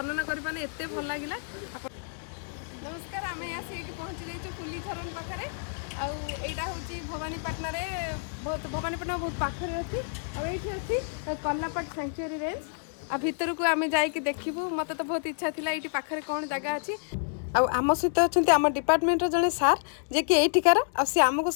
करें एत भल लगे। नमस्कार आम आसी पहुँची जाइए फुलीझरण पाखे आईटा हूँ भवानीपाटना बहुत भवानीपाटना बहुत पाखे अच्छी आईटी अच्छी कल्लापाट सेंचुरी रेंज आ भितर को आम जाकि देखू मत तो बहुत इच्छा थी ये पाखे कौन जगह अच्छी आम सहित अच्छा आम डिपार्टमेंट जड़े सार जे कि यहीकार सी आमको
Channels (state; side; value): silent; right; digital silence